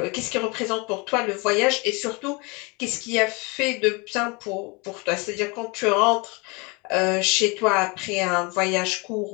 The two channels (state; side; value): quieter; right; 28.7 dB